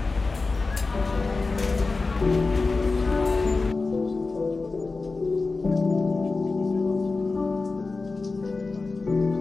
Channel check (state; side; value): quieter; right; 3.8 dB